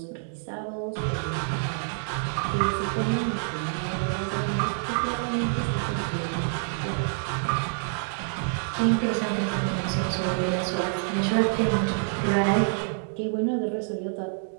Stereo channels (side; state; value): left; silent; 60 dB below the other